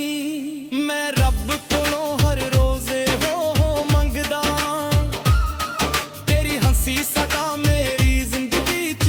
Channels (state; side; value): identical; both; correlation 1.00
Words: ਮੈਂ ਰੱਬ ਕੋਲੋਂ ਹਰ ਰੋਜ਼ ਹੋ ਮੰਗਦਾ, ਤੇਰੀ ਹੰਸੀ ਸਦਾ ਮੇਰੀ ਜ਼ਿੰਦਗੀ